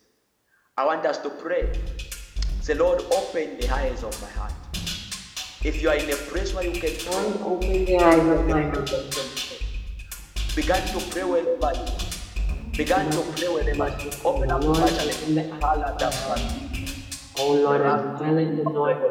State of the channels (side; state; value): both; identical; correlation 1.00